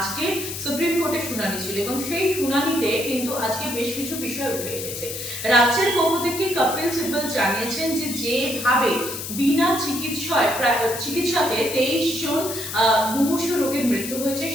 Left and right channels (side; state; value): left; noise; hiss, 7 dB below the sound